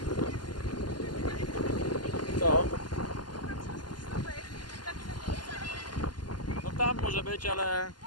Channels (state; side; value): late; right; 0.71 ms